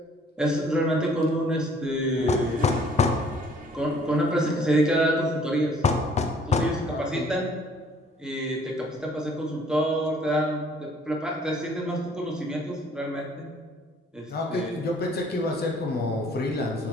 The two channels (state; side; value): normal; both; correlation 0.58